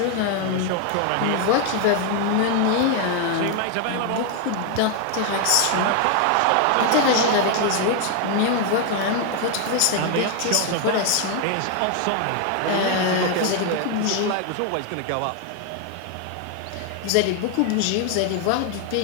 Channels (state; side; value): different; both; correlation 0.01